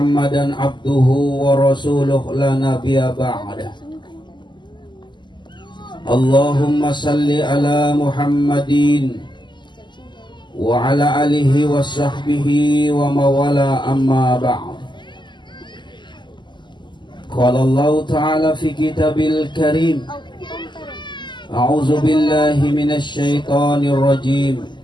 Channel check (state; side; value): late; right; 0.22 ms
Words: abduhu wa rasuluh la nabiyya ba'dah. Allahumma salli ala muhammadin wa ala alihi wa sahbihi wa mawala amma ba'd. Qala Allah ta'ala fi kitabil karim, a'udzu billahi minasy syaithanir rajim.